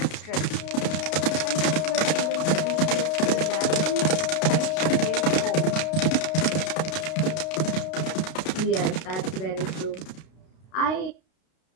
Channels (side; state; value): right; late; 32 ms